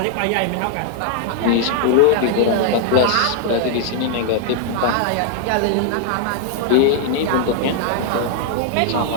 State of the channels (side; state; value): both; different; correlation 0.00